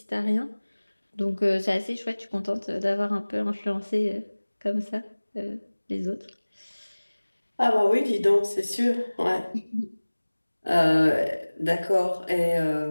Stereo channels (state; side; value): inverted; both; correlation -1.00